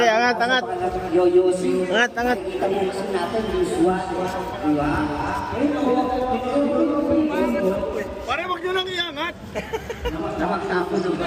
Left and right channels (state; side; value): identical; both; correlation 1.00